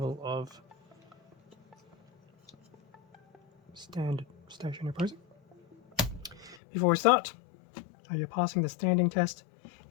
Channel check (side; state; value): right; drops out; at 6.6 s